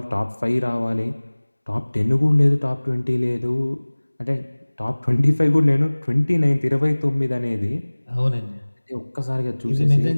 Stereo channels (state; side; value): inverted; both; correlation -1.00